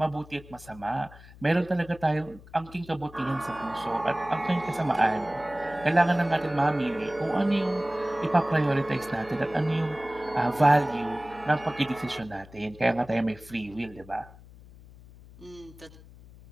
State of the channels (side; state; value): left; noise; hum, 20 dB below the sound